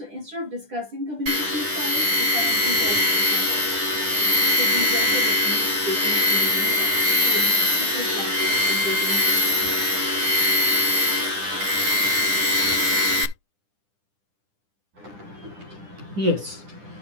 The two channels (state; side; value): late; left; 10 ms